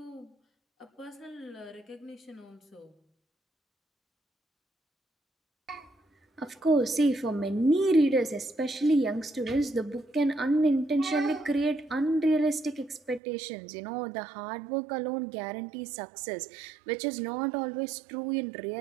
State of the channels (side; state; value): left; drops out; at 13.2 s